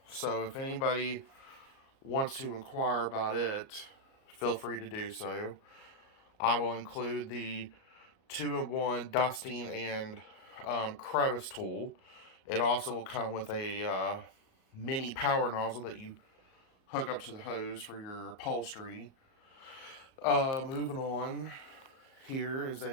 so if anybody wants to inquire about it, feel free to do so. I will include the 2-in-1 dusting and crevice tool. It also will come with a mini power nozzle that you hook up to the hose for your upholstery. Moving on, here is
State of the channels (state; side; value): late; right; 38 ms